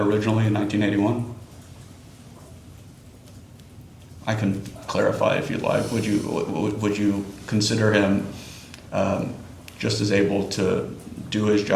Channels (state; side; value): identical; both; correlation 1.00